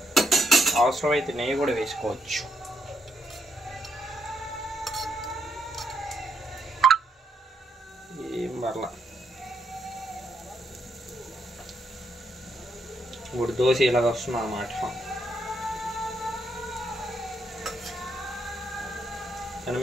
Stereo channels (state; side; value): normal; both; correlation 0.77